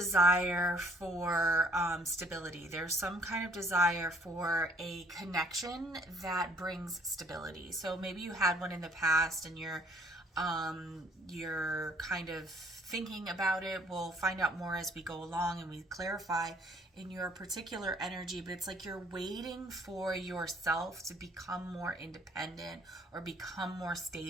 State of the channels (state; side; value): normal; both; correlation 0.61